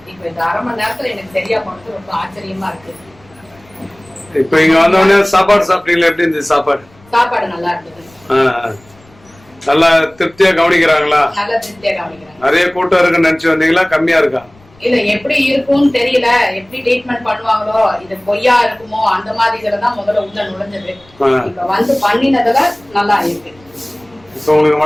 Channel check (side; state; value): left; noise; rumble, 28 dB below the sound